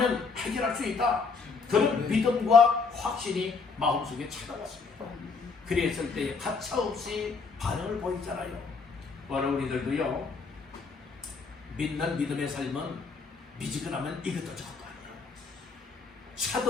해결할 수 있다. 그런 믿음과 확신이 마음속에 찾아왔습니다. 그랬을 때 가차없이 반응을 보이잖아요. 오늘 우리들도요 믿는 믿음의 삶은 미지근하면 이것도 저것도 아니에요.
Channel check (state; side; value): quieter; right; 4.7 dB